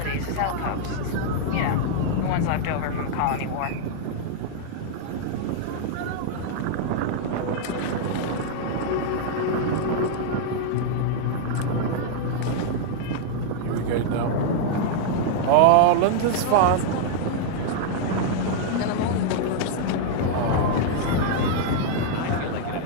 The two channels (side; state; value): both; different; correlation -0.01